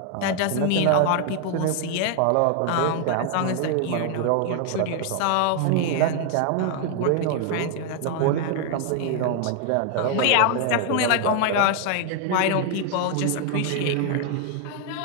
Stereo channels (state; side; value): different; both; correlation 0.00